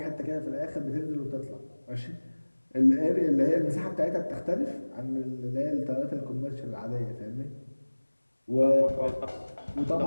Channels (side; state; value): both; inverted; correlation -1.00